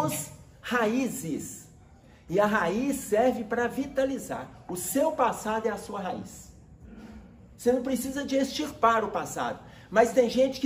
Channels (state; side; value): identical; both; correlation 1.00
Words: raízes. E a raiz serve para vitalizar. O seu passado é a sua raiz. Você não precisa de extirpar o passado. Mas tem gente